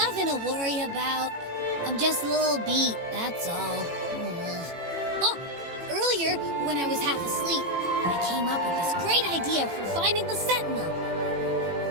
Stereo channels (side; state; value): left; late; 18 ms